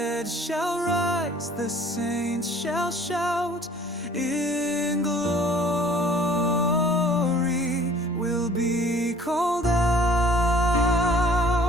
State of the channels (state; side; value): normal; both; correlation 0.53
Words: shall rise, the saints shall shout in glory. We'll be called out.